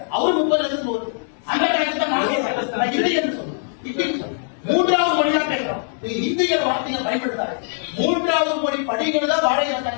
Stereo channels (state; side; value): silent; right; 65 dB below the other